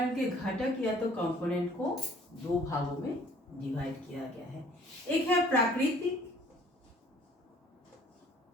के घटक या तो कंपोनेंट को दो भागों में डिवाइड किया गया है। एक है प्राकृतिक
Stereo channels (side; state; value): both; normal; correlation 0.56